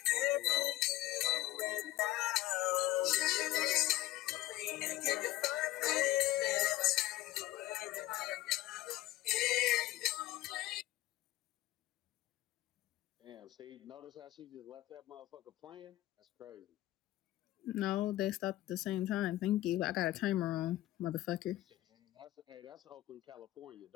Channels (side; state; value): right; quieter; 16.2 dB